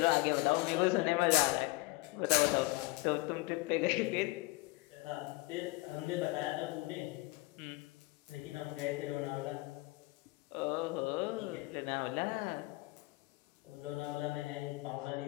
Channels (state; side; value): quieter; right; 21.9 dB